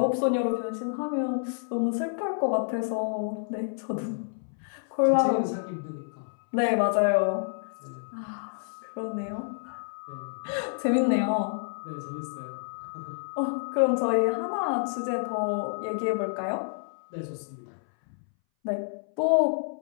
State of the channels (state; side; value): silent; right; 59 dB below the other